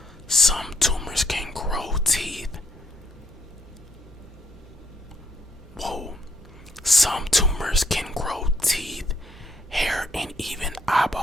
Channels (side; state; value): both; normal; correlation 0.70